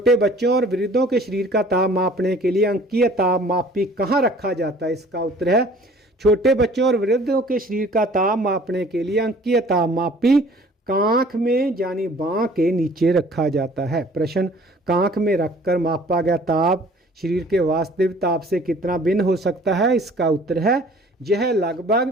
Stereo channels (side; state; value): both; normal; correlation 0.52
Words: बच्चों और वृद्धों के शरीर का ताप मापने के लिए अंकीय तापमापी कहाँ रखा जाता है? इसका उत्तर है छोटे बच्चों और वृद्धों के शरीर का ताप मापने के लिए अंकीय तापमापी कांख में यानी बांह के नीचे रखा जाता है। प्रश्न, कांख में रखकर मापा गया ताप शरीर के वास्तविक ताप से कितना भिन्न हो सकता है? इसका उत्तर है यह